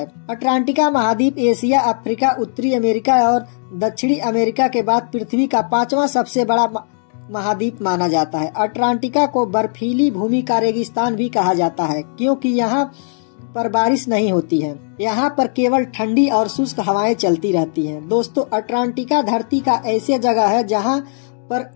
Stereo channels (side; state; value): right; silent; digital silence